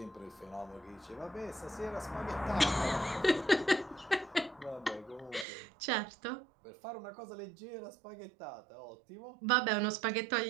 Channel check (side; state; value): left; drops out; at 5.5 s